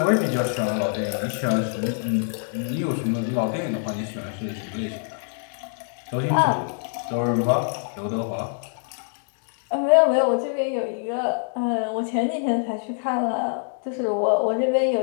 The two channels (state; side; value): silent; right; digital silence